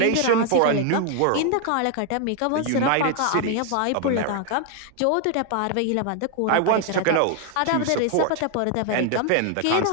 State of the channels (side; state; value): both; different; correlation 0.00